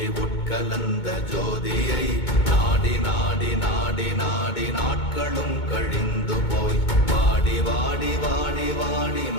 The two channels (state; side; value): late; right; 2.2 ms